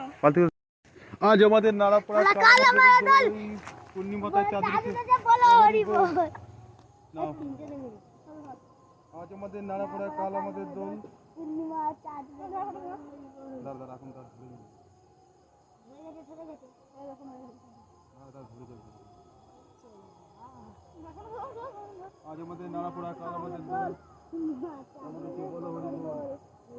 বালতি। আজ আমাদের নাড়া পড়া, কাল আমাদের দোল। পূর্ণিমাতায় চাঁদ উঠেছে, বলো হরি বল। নাও আজ আমাদের নাড়া পড়া, কাল আমাদের দোল। পূর্ণিমা চাঁদ দাঁড়া দাঁড়া, এখন তার ধরে যাবে। আজ আমাদের নাড়া পড়া, কাল আমাদের দোল। বলো হরি বল।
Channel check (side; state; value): both; identical; correlation 1.00